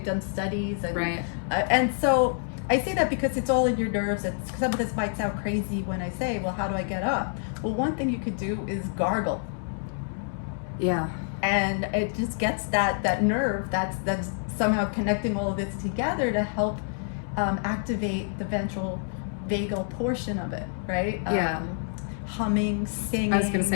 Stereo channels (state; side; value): silent; right; digital silence